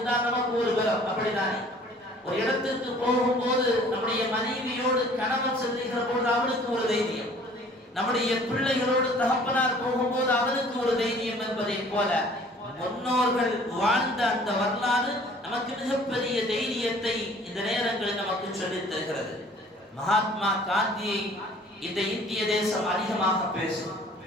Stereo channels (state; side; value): normal; both; correlation 0.52